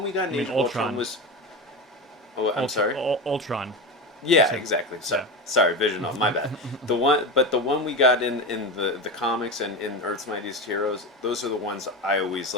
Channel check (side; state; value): both; normal; correlation 0.21